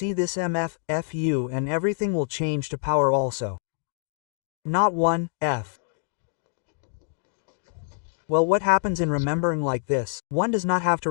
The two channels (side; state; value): right; silent; digital silence